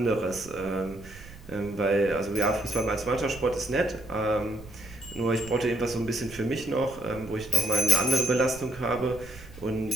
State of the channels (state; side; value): noise; right; rumble, 17 dB below the sound